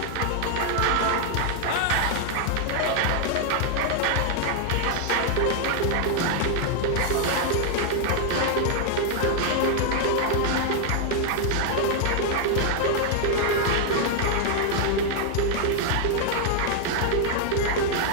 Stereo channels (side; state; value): both; different; correlation 0.00